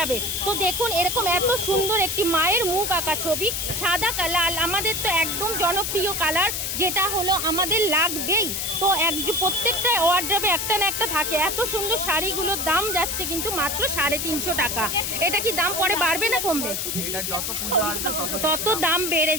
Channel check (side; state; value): left; noise; hiss, 2 dB below the sound